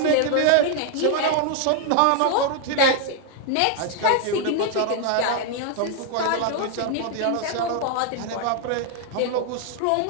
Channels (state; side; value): different; both; correlation 0.00